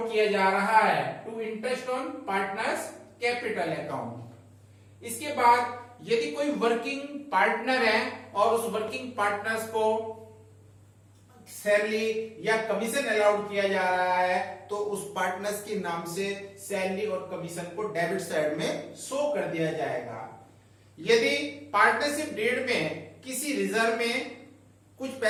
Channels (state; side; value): identical; both; correlation 1.00